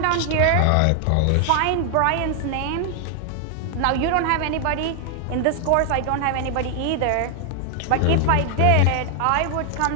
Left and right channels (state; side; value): different; both; correlation 0.00